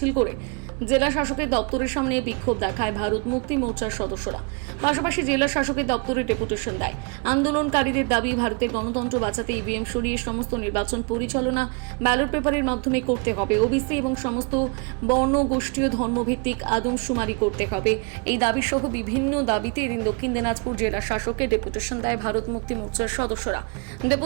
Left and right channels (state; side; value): quieter; left; 33.4 dB